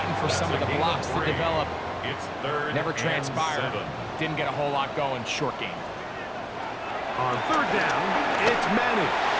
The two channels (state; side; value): identical; both; correlation 1.00